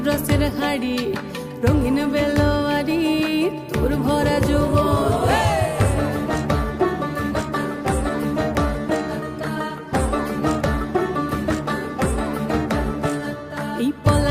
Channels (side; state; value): both; identical; correlation 1.00